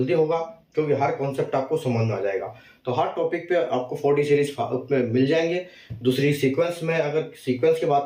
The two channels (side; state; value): both; identical; correlation 1.00